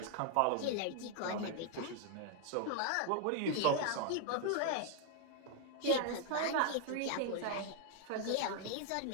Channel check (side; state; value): both; different; correlation 0.00